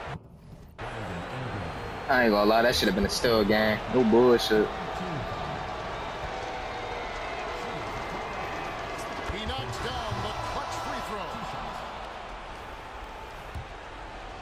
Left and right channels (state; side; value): identical; both; correlation 1.00